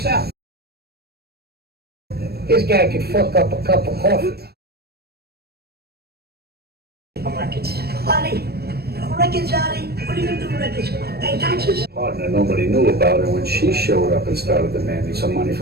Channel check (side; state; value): left; late; 0.46 ms